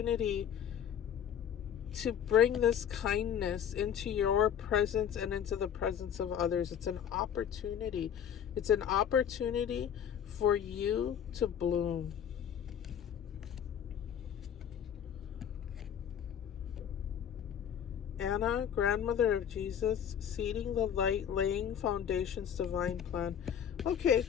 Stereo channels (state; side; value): quieter; right; 8.8 dB